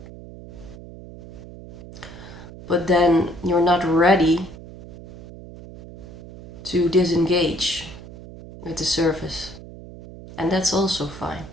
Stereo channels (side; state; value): right; noise; hum, 16 dB below the sound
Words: But then you're not ready to disengage with the surface. And that's also fine.